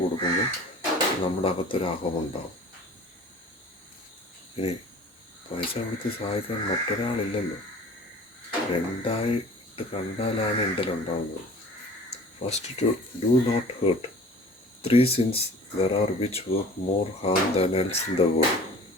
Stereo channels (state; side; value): normal; both; correlation 0.45